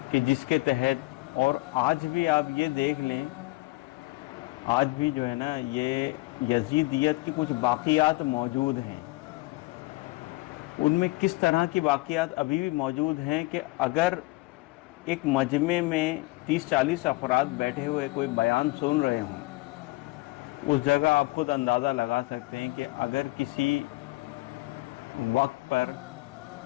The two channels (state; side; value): quieter; right; 23.1 dB